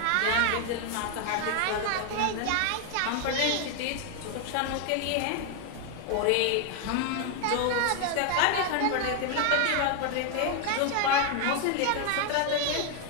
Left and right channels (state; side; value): different; both; correlation 0.00